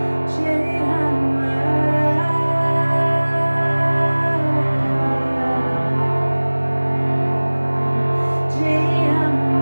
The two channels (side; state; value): both; inverted; correlation -1.00